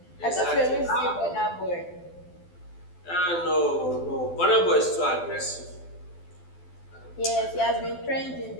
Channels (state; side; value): late; right; 12 ms